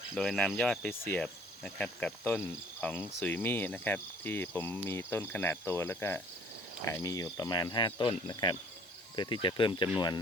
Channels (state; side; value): normal; both; correlation 0.55